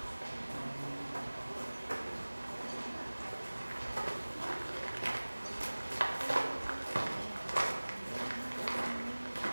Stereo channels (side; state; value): both; inverted; correlation -1.00